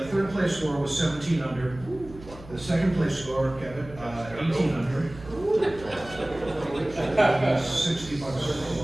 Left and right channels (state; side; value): noise; right; hum, 17 dB below the sound